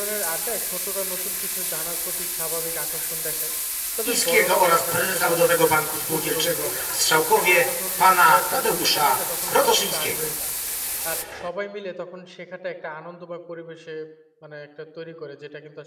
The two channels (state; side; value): identical; both; correlation 1.00